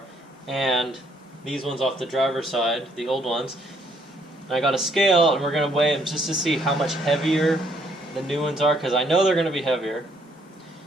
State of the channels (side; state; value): both; normal; correlation 0.67